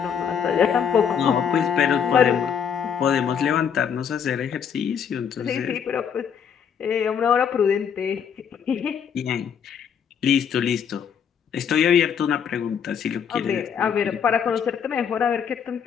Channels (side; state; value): right; quieter; 7.6 dB